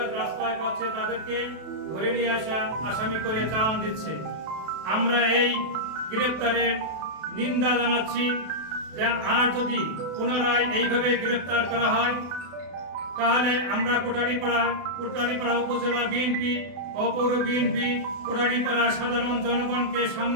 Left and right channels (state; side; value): late; left; 32 ms